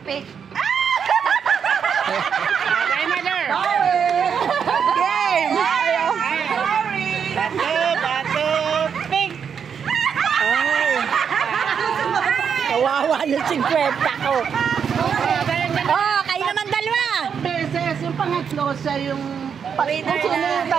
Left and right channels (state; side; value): quieter; left; 7.1 dB